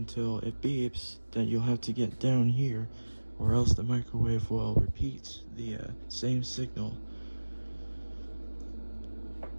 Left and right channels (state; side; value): inverted; both; correlation -1.00